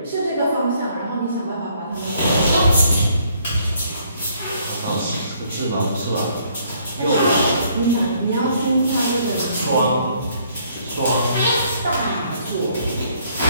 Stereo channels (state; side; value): inverted; both; correlation -0.66